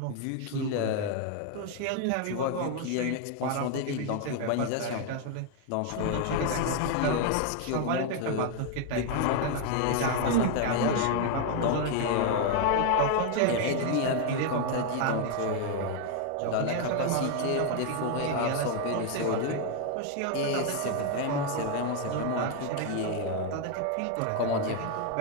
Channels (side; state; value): both; different; correlation 0.01